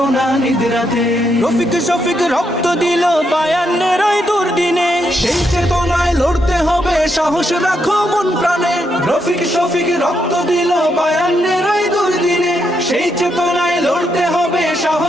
না নিদ্রাতে। রফিক শফিক রক্ত দিল ৫২-এর ওই দুর্দিনে, সেই চেতনায় লড়তে হবে, সাহস রাখো মন প্রাণে। রফিক শফিক রক্ত দিল ৫২-এর ওই দুর্দিনে, সেই চেতনায় লড়তে হবে,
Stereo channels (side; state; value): both; normal; correlation 0.79